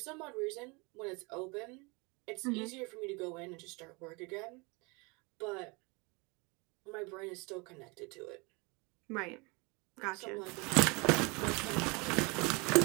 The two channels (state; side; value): quieter; left; 28.3 dB